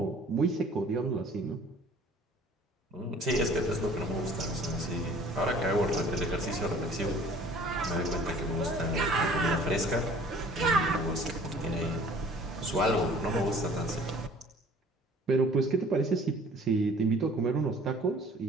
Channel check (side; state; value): both; normal; correlation 0.51